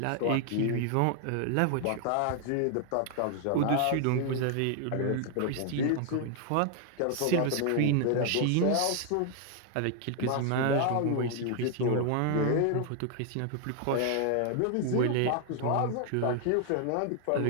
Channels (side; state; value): both; different; correlation 0.00